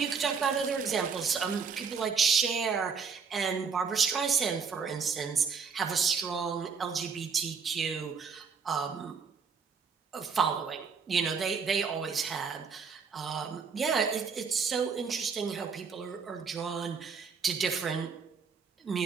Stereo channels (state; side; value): quieter; left; 5.8 dB